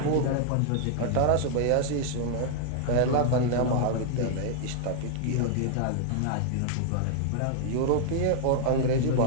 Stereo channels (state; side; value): different; both; correlation -0.01